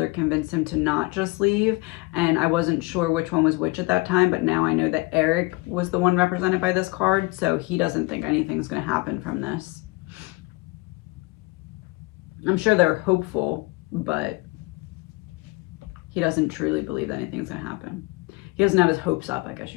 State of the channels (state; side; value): quieter; right; 24.2 dB